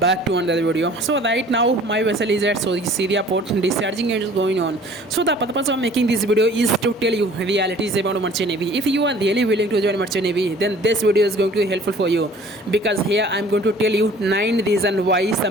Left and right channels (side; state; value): both; normal; correlation 0.51